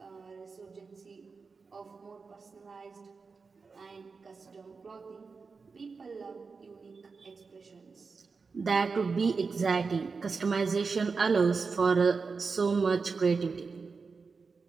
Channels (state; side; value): quieter; left; 4.7 dB